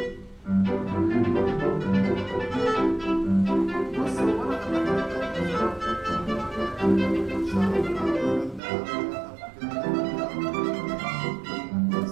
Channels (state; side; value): drops out; left; at 8.6 s